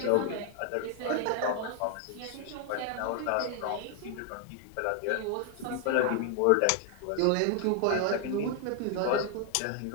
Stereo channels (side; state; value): both; different; correlation 0.00